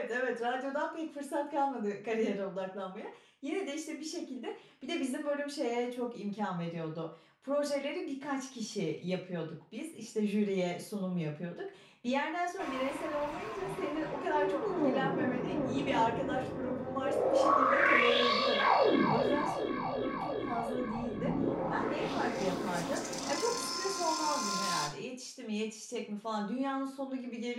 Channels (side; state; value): both; identical; correlation 1.00